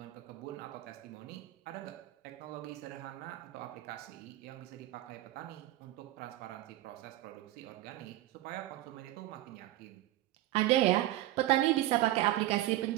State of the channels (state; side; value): quieter; left; 15.5 dB